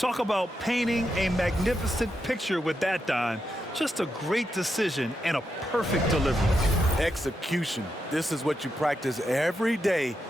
about painting a magnificent picture with that dime. Just a great decision and a perfect delivery. Execution. This is what you practice every day.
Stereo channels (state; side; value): normal; both; correlation 0.84